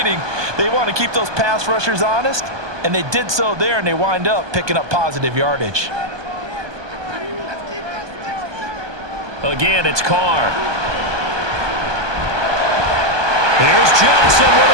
They want to keep those pass rushers honest, and they did so there, and they wind up picking up positive yardage. Again, it's Carr. Here's Johnson with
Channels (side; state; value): left; late; 1.2 ms